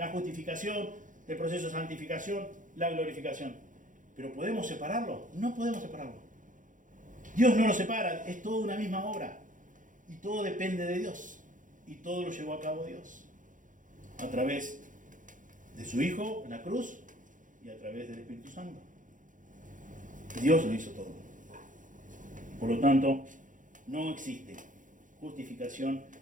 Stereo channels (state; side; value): late; left; 0.38 ms